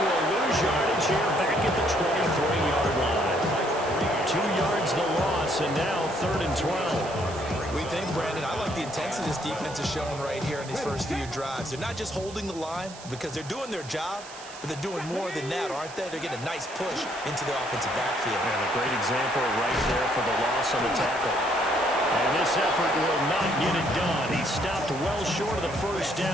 will lose yardage here back at the 23-yard line. 2 yards the loss, and now 3rd and 12. We think, Brandon, I like the intensity this defense is showing right here in these first few drives. They're not just holding the line because they're doing their job, but they're doing more than that, aren't they? They're getting a nice push into the offensive backfield. And a great example right there for the loss on the tackle. And this effort will not get it done. He stopped well short of the first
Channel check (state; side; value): noise; right; hiss, 16 dB below the sound